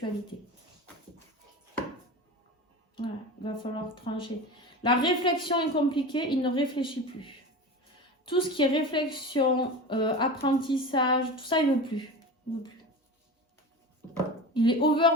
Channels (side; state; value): both; normal; correlation 0.30